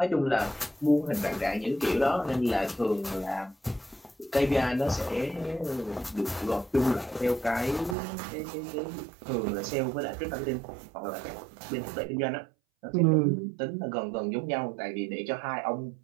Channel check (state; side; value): drops out; left; at 8.0 s